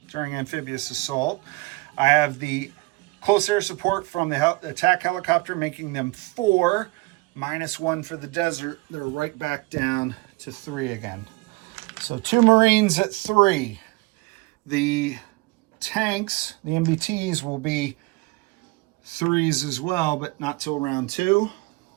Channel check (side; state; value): left; quieter; 24.1 dB